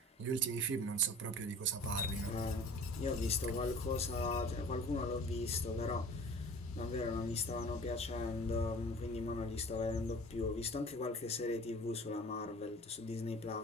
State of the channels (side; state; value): both; normal; correlation 0.44